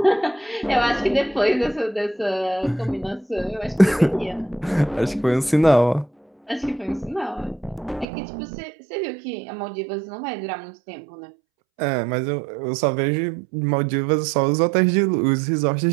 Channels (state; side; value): drops out; left; at 8.1 s